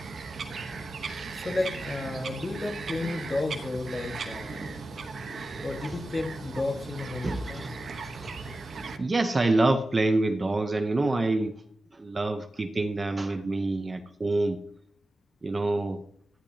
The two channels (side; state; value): both; normal; correlation 0.93